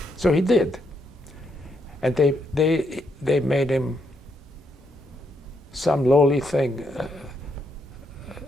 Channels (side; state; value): both; normal; correlation 0.77